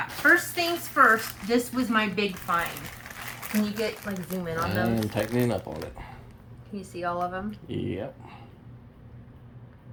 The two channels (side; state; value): both; identical; correlation 1.00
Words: First things first, this was my big find. Can you get, like, zoom in on those? I'm tightening up on it. Can you see all of them? Yep.